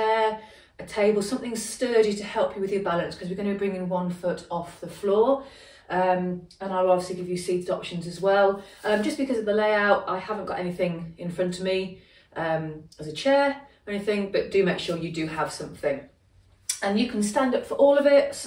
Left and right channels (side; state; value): both; identical; correlation 1.00